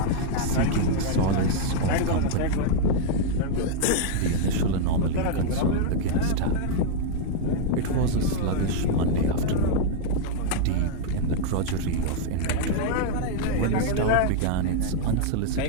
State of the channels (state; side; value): different; both; correlation -0.01